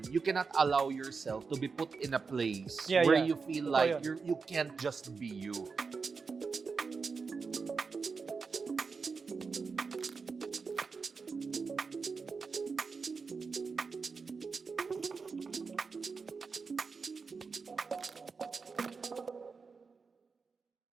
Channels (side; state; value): left; quieter; 4.9 dB